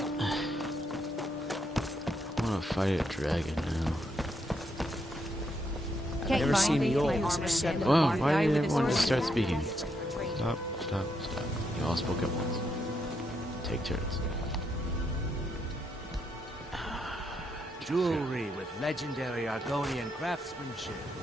I wanna fight a dragon now. I've never seen the olds except... Well, why did everyone just start speaking? Stop, stop, stop. You all spoke at once. Take turns. Jewelry with legendary Argonian craftsmanship.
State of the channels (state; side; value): normal; both; correlation 0.79